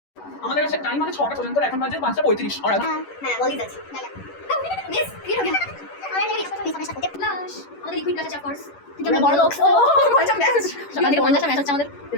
আমাদের কাছে টাইম আছে 6টা পর্যন্ত, এখন বাজে 5:35 আর হ্যাঁ বলি যাচ্ছে মিস কি হলো আমাদের এই সব মিস হচ্ছে প্লাস আমাদের লিকুইড প্লাস অফ কোর্স কিন্তু আমরা বড় লোক ও আচ্ছা মেসেজ সকাল থেকে 50টা ম্যাচ হচ্ছে আমাদের।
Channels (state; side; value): late; right; 11 ms